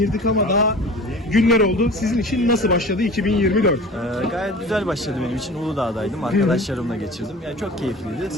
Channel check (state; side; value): normal; both; correlation 0.39